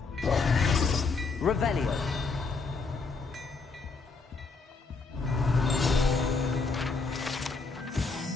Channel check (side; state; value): right; quieter; 4.3 dB